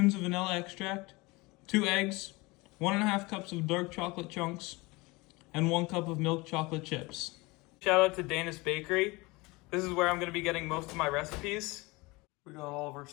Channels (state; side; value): quieter; right; 23.8 dB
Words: of vanilla extract, 2 eggs, 1 1/2 cups of dark chocolate chunks, and 1 cup of milk chocolate chips. Shout out to Dana's Bakery. This is where I'm going to be getting most of my recipes. We got all of our